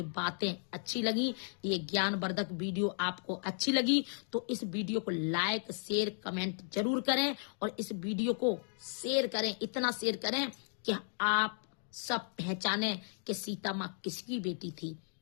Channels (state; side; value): silent; right; 54 dB below the other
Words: बातें अच्छी लगी, ये ज्ञानवर्धक वीडियो आपको अच्छी लगी, तो इस वीडियो को लाइक शेयर कमेंट जरूर करें, और इस वीडियो को शेयर करें, इतना शेयर करें कि आप सब पहचाने कि सीता माँ किसकी बेटी थी।